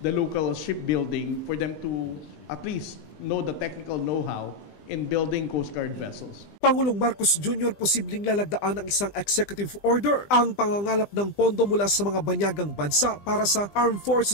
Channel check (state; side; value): late; right; 20 ms